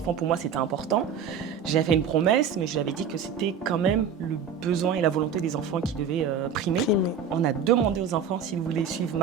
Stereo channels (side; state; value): left; quieter; 6.6 dB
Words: pour moi, c'était important. J'ai fait une promesse, mais je lui avais dit que c'était quand même le besoin et la volonté des enfants qui devaient primer. On a demandé aux enfants s'ils voulaient suivre